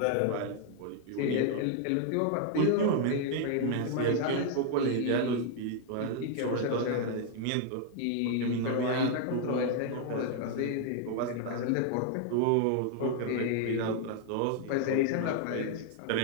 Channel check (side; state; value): both; different; correlation 0.00